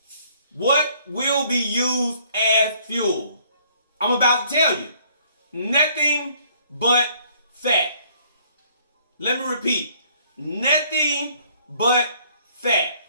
What will be used as fuel? I'm about to tell you. Nothing but fat. Let me repeat. Nothing but fat.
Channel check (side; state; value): both; inverted; correlation -0.61